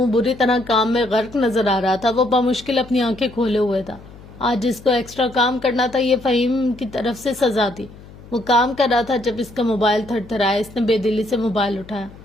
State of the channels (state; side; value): noise; left; hum, 19 dB below the sound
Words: بری طرح کام میں غرق نظر آ رہا تھا۔ وہ بمشکل اپنی آنکھیں کھولے ہوئے تھا۔ آج اس کو ایکسٹرا کام کرنا تھا، یہ فہیم کی طرف سے سزا تھی۔ وہ کام کر رہا تھا جب اس کا موبائل تھر تھرایا۔ اس نے بے دلی سے موبائل اٹھایا۔